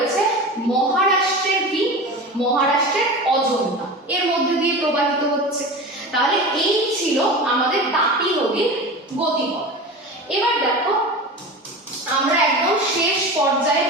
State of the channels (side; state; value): both; normal; correlation 0.31